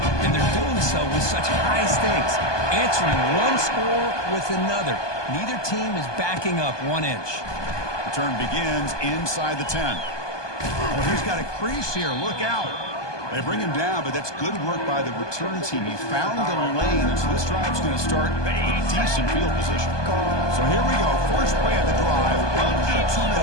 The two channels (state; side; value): late; right; 1.2 ms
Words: and they're doing so with such high stakes. Answering one score with another. Neither team is backing up 1 inch. Return begins inside the 10. Well, he's got a crease here. Look out. They bring him down, but that's good work by the return team. He found the lane, so this drive's going to start with decent field position. So here we go. First play of the drive, under 2